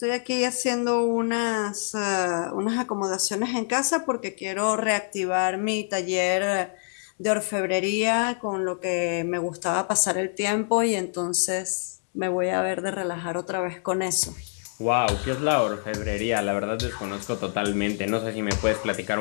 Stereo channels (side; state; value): right; silent; digital silence